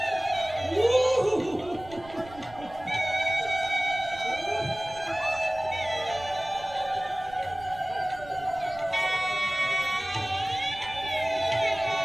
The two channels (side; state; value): right; noise; rumble, 19 dB below the sound